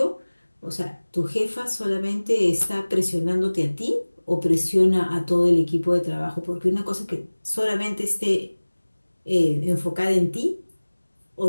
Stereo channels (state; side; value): inverted; both; correlation -1.00